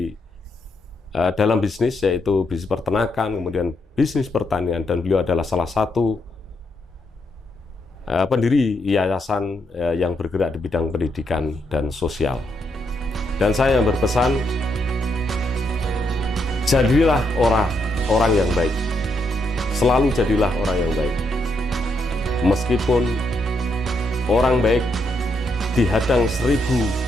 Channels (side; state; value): both; normal; correlation 0.78